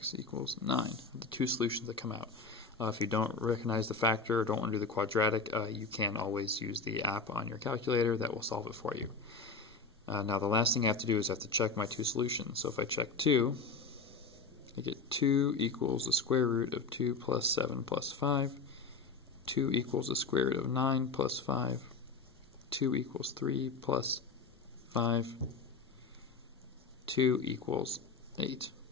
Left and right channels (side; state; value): right; quieter; 4.2 dB